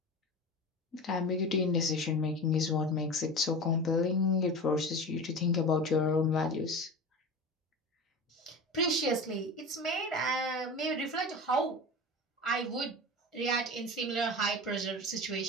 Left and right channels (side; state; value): both; normal; correlation 0.30